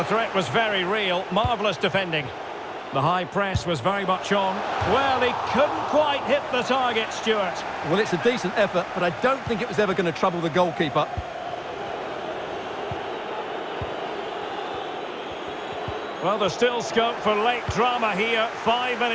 threat was very real. Marvellous defending. The high press was very much on. Well, he couldn't quite hit the target, Stuart. Well, it's a decent effort, but I don't think it was ever going to trouble the goalkeeper. Well, there's still scope for late drama here. 5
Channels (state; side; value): identical; both; correlation 1.00